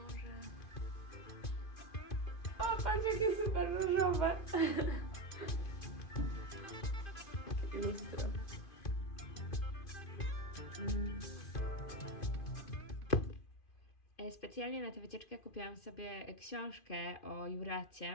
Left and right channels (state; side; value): late; right; 2.5 ms